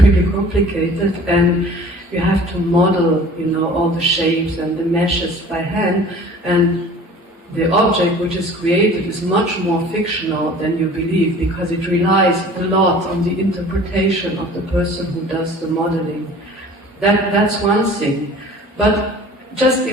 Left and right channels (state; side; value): normal; both; correlation 0.46